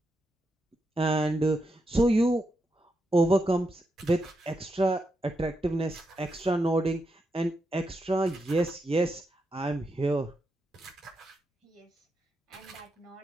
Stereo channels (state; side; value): normal; both; correlation 0.85